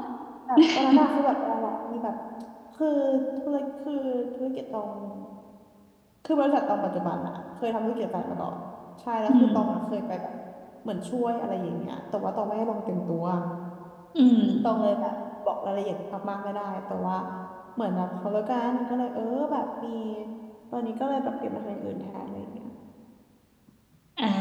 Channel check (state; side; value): identical; both; correlation 1.00